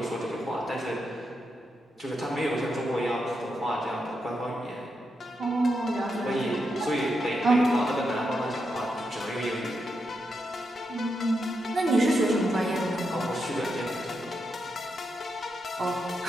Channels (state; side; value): normal; both; correlation 0.84